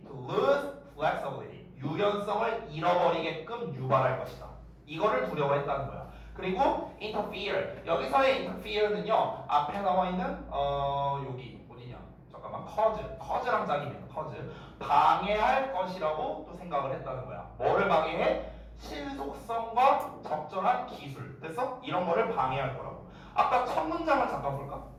to lose flexibility 유연성을 잃어버리게끔 유발할 것이다. 이거를 두려워했다는 거야. 그리고 interfere 여기서의 interfere는요 앞에 나와 있는 여기 어디냐? 잠깐만 cause랑 짝입니다. cause 방해할 것이라고 또 생각을 했다는 거야. 뭐를 방해해? 신속성과 적절한 기술. 됐어? 이런 거를 방해할 거라고. 아까 첫 문장을 잠깐 볼까?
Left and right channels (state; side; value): identical; both; correlation 1.00